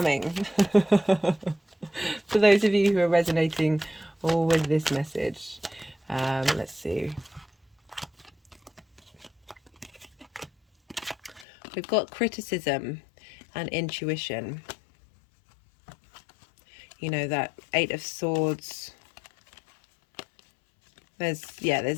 For those of you who are resonating with this message. Let's see. We've got criticism and intuition. You know, that 8 of Swords. There's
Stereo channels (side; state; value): right; drops out; at 11.5 s